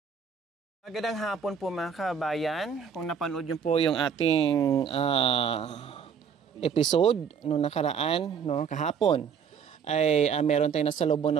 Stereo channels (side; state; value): left; quieter; 6.9 dB